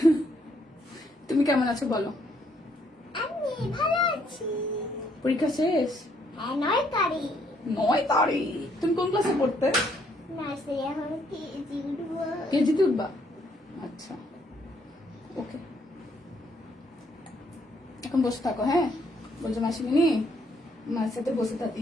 তুমি কেমন আছো বলো? আমি ভালো আছি। পরীক্ষা শেষ? হ্যাঁ, 9 তারিখ। 9 তারিখ। তুমি কোন ক্লাসে পড়তে? নার্সারি, এখন কেজি উঠবো। কেজিতে উঠবা? আচ্ছা, ওকে। এখন বসে থাকো, হ্যাঁ? বলছো মাসিমিনি মার সাথে বসে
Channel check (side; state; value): both; normal; correlation 0.70